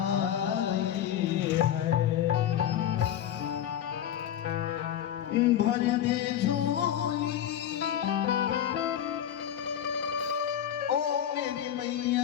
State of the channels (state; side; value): quieter; right; 10.4 dB